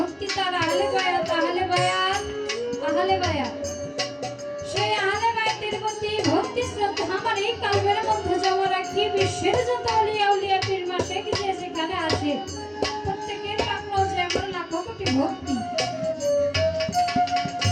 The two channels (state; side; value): identical; both; correlation 1.00